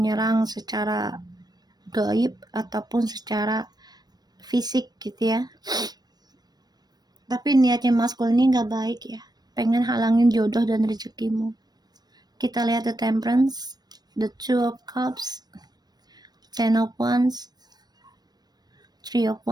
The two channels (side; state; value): left; late; 0.19 ms